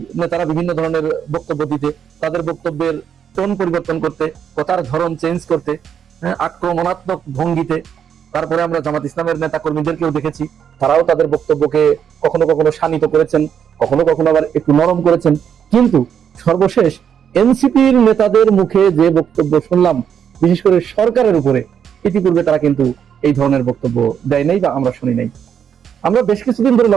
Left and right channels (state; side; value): quieter; left; 8.2 dB